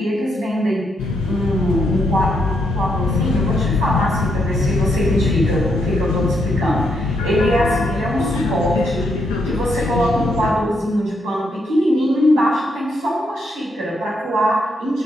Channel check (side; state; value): both; normal; correlation 0.78